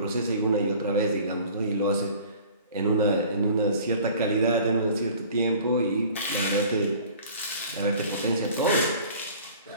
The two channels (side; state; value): both; inverted; correlation -0.47